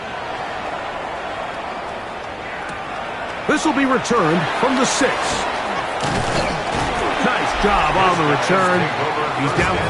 This will be returned from the 6. Nice job on the return. He's down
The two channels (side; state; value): both; identical; correlation 1.00